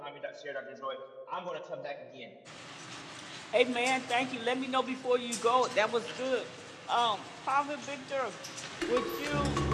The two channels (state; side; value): identical; both; correlation 1.00